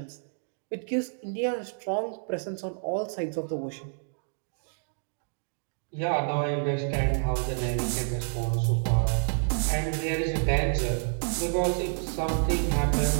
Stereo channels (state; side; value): silent; left; digital silence